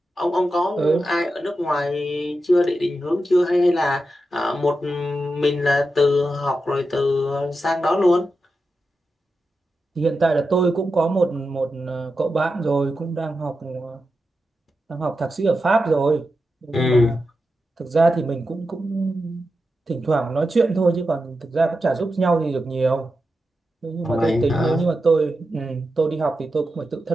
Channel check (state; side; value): normal; both; correlation 0.89